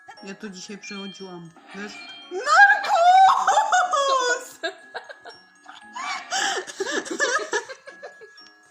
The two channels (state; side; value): identical; both; correlation 1.00